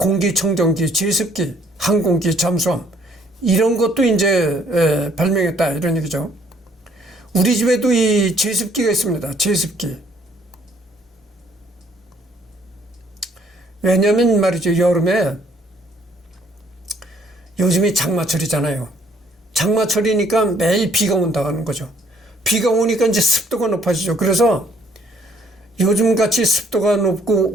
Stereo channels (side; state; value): both; normal; correlation 0.63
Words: 제습기, 항공기, 잠수함 이런 것도 이제 발명했다 이런 얘기죠. 우리 집에도 이 제습기가 있습니다. 제습기. 왜냐하면 말이죠. 여름에 요즘이 장마철이잖아요. 장마철이니까 매일 비가 온다는 거죠. 비가 오니까 이제 습도가 높아지죠. 그래서 요즘같이 습도가 높고